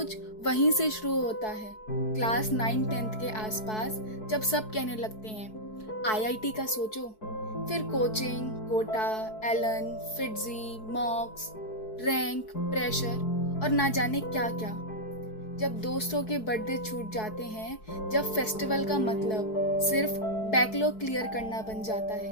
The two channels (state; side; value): late; right; 4.6 ms